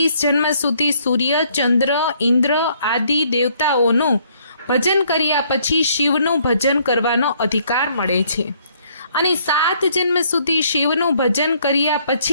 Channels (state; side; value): inverted; both; correlation -0.65